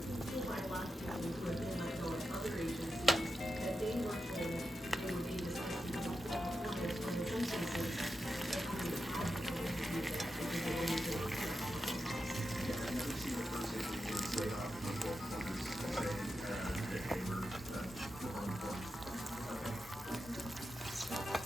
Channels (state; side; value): normal; both; correlation 0.89